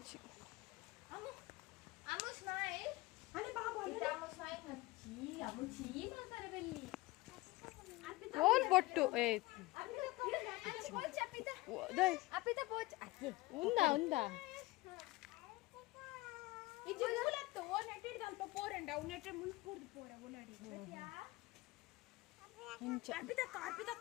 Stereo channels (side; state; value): right; quieter; 20.3 dB